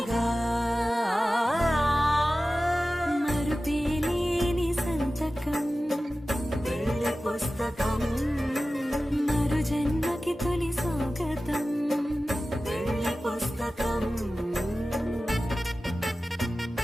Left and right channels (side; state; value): both; normal; correlation 0.95